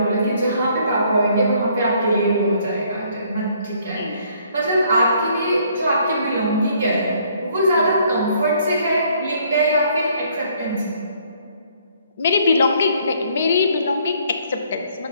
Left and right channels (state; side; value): inverted; both; correlation -0.64